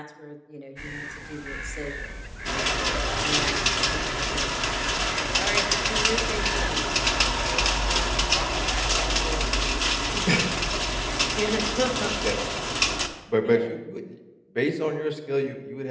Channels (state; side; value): identical; both; correlation 1.00